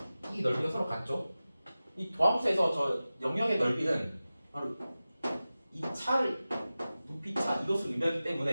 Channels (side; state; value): both; inverted; correlation -0.96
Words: 이 넓이가 서로 같죠. 이 도함수에서 저 영역의 넓이는 바로 이 차를 높이 차 이것을 의미하기